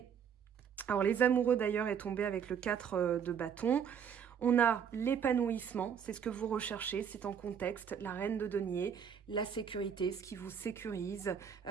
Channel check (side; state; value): left; quieter; 7.7 dB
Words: Alors, les amoureux, d'ailleurs, est tombé avec le 4 de bâton. On a l'épanouissement, c'est ce que vous recherchez, c'est en contexte, la reine de denier, la sécurité, ce qui vous sécurise,